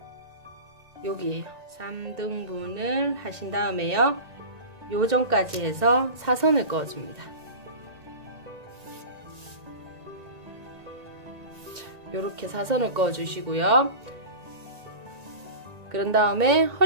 여기에요. 3등분을 하신 다음에요 요점까지 해서 사선을 그어줍니다. 요렇게 사선을 그어 주시고요. 그런 다음에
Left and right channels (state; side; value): late; left; 1.9 ms